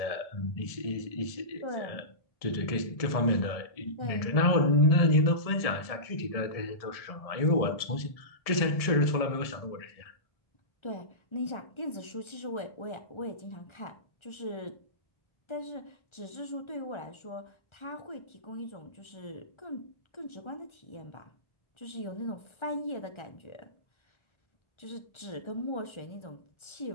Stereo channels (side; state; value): right; late; 1.7 ms